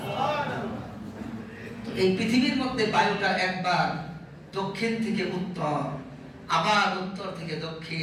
তো এই পৃথিবীর মধ্যে বায়ুটা একবার দক্ষিণ থেকে উত্তর, আবার উত্তর থেকে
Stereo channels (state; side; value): identical; both; correlation 1.00